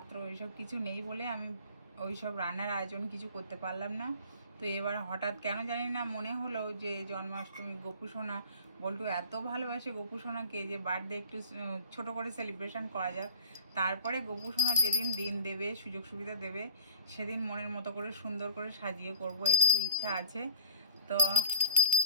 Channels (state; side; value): inverted; both; correlation -0.52